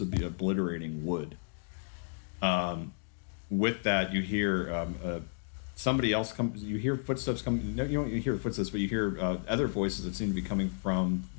be obliterating wood. With that, you hear somebody else come. You hear footsteps coming. No, you don't hear footsteps, but you hear other voices that seem to be coming from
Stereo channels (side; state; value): right; silent; digital silence